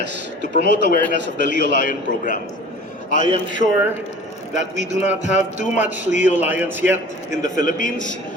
to promote awareness of the Leo Lion program. I am sure that we do not have too much Leo Lions yet in the Philippines,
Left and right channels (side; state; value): both; normal; correlation 0.42